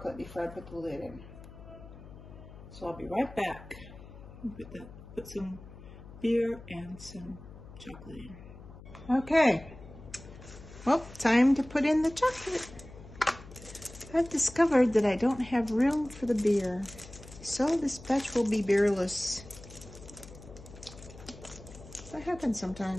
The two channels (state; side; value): noise; left; hum, 17 dB below the sound